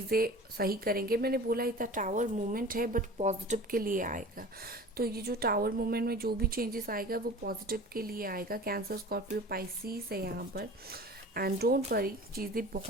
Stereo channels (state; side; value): normal; both; correlation 0.40